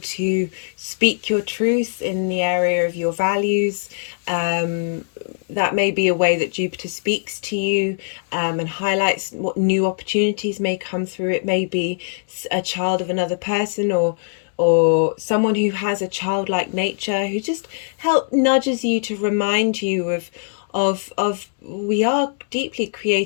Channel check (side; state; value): right; silent; digital silence